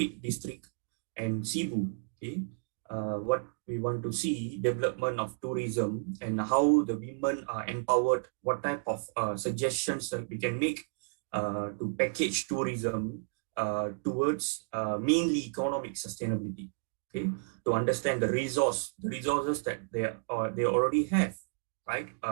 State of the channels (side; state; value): left; silent; digital silence